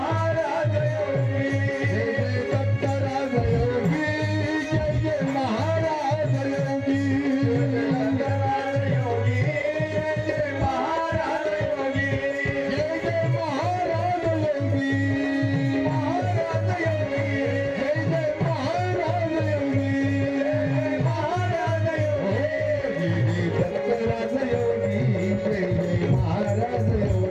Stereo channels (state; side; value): identical; both; correlation 1.00